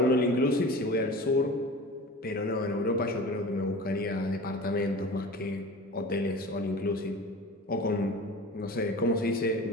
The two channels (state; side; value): normal; both; correlation 0.36